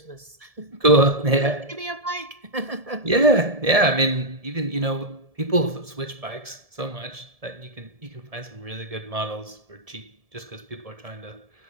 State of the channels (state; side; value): late; left; 1.7 ms